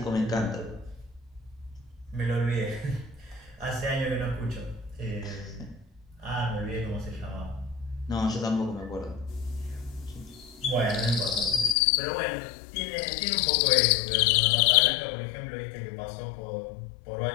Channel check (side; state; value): right; drops out; at 11.8 s